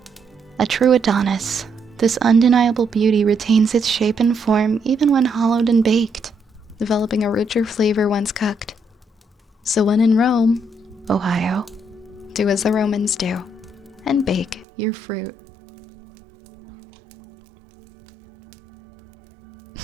A true Adonis, this undeniable beauty retains its shape and form even when hollowed and baked, developing a richer flavor once cooked. So when in Rome, Ohio, do as the Romans do, and bake your fruit.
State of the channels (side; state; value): left; drops out; at 14.7 s